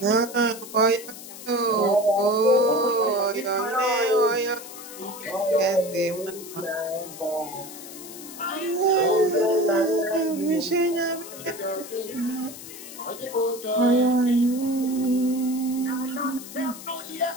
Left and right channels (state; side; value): noise; left; hiss, 14 dB below the sound